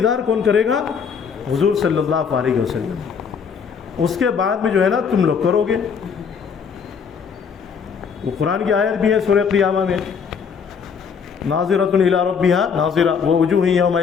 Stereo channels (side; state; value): right; quieter; 6.4 dB